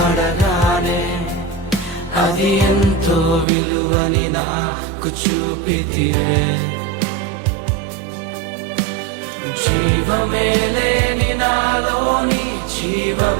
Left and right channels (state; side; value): drops out; left; at 3.5 s